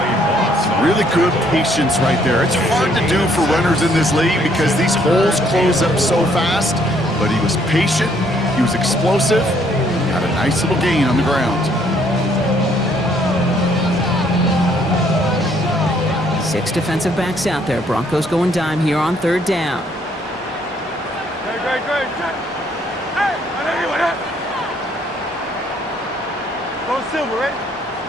Really good patience right there. It's hard to do for runners in this league because these holes close up so fast, but he was patient, he was explosive, got a nice little gain on the ground. 6 defensive backs out there. Broncos going dime here on 3rd down. Hey, I know you want that. Go Silver, right?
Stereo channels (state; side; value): normal; both; correlation 0.66